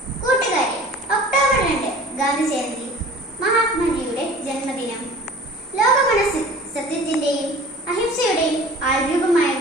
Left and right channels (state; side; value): normal; both; correlation 0.44